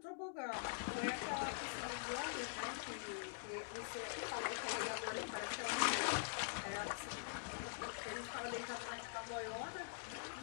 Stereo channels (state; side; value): silent; right; digital silence